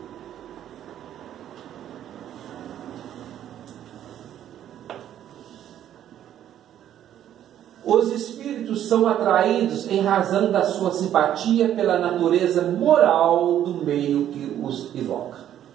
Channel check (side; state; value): left; quieter; 11.0 dB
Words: Os espíritos são atraídos em razão da sua simpatia pela natureza moral do meio que os evoca.